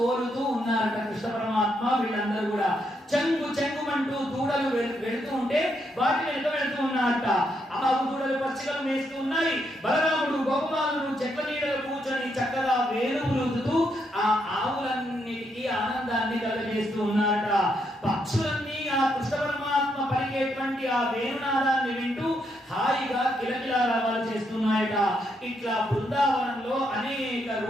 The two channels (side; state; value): both; normal; correlation 0.78